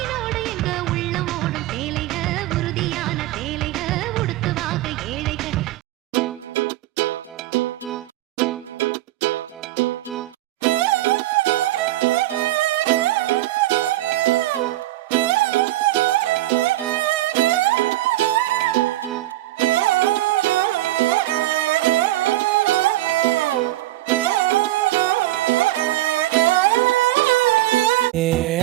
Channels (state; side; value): quieter; left; 16.4 dB